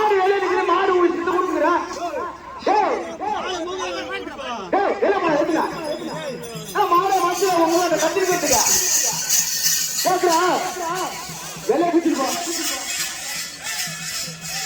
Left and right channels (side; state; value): both; identical; correlation 1.00